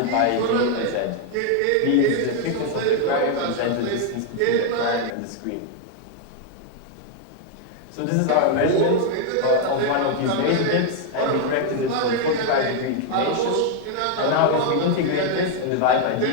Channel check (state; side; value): different; both; correlation 0.01